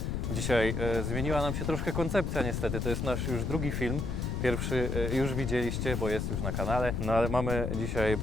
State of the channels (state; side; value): noise; left; rumble, 1 dB below the sound